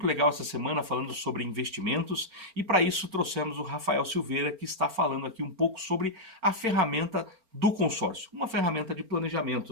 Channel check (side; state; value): left; late; 4.4 ms